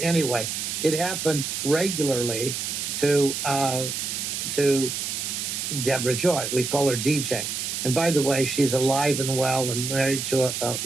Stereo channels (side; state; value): right; noise; hiss, 3 dB below the sound